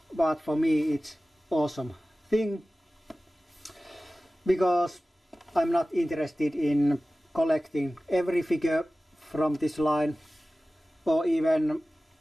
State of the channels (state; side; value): normal; both; correlation 0.96